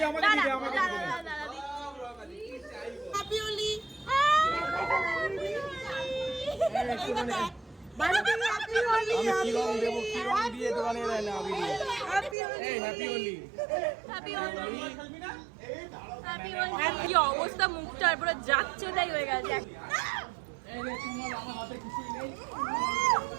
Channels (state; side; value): drops out; left; at 12.4 s